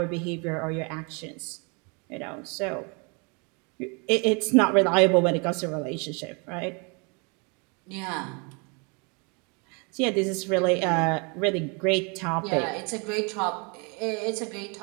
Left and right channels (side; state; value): left; quieter; 32.8 dB